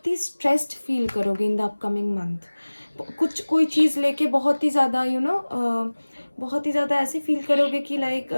ही स्ट्रेस्ड फील करोगे इन द अपकमिंग मंथ। कुछ कोई चीज़ लेके बहुत ही ज़्यादा बहुत ही ज़्यादा ऐसे फील करोगे कि लाइक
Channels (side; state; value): both; inverted; correlation -1.00